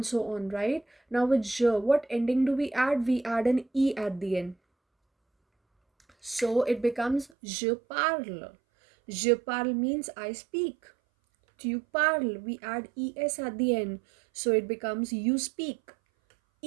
so on, right? Now with je, what ending do we add? We add an e at the end. So it becomes je parle. Je parle means I speak. Tu parles, we add es at the end, so it becomes you speak.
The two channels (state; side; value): drops out; left; at 7.3 s